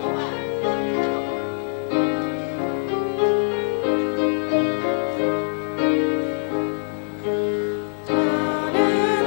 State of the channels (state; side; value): silent; right; digital silence